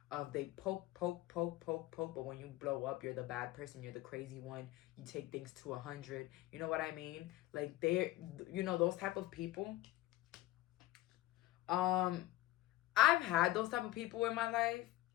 of they poke, but when you blow up, you're the bad person, you're the crazy one, you take things to 100. You know what I mean? Like, they're, you know, those type of people. I've had those type of people in my life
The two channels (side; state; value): right; quieter; 16.8 dB